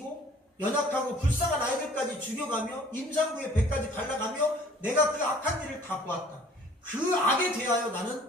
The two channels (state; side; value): normal; both; correlation 0.53